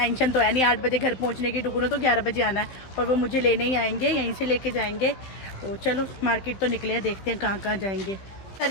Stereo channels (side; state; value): right; late; 15 ms